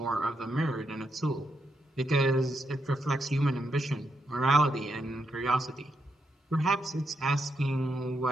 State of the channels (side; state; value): both; normal; correlation 0.82